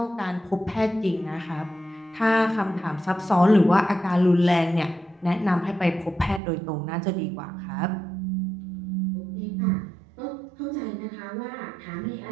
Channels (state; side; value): drops out; left; at 6.4 s